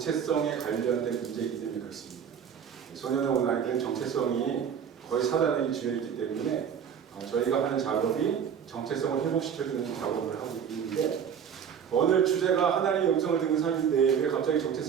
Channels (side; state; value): left; quieter; 7.8 dB